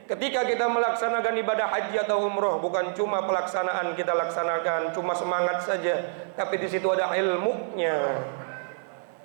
ketika kita melaksanakan ibadah haji atau umroh, bukan cuma pelaksanaan kita laksanakan, cuma semangat saja, tapi di situ ada ilmunya.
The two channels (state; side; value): silent; left; digital silence